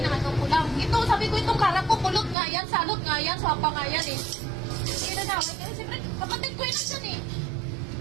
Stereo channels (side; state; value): left; drops out; at 2.4 s